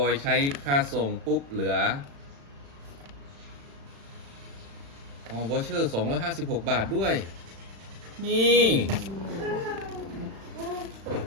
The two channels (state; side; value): late; left; 36 ms